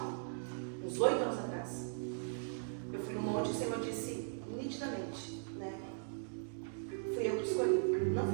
uns 8 anos atrás. Eu fui num monte e o Senhor disse nitidamente, né? Fui eu que te escolhi, não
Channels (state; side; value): silent; left; digital silence